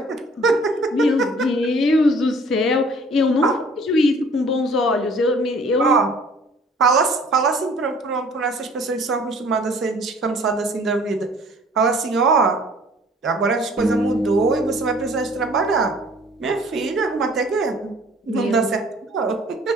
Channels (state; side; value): normal; both; correlation 0.54